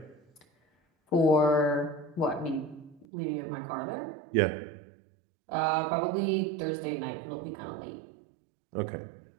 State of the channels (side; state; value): left; drops out; at 3.1 s